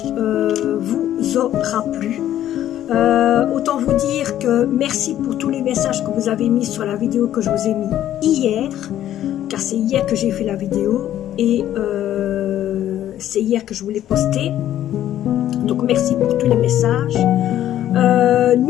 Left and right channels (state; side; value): quieter; right; 12.0 dB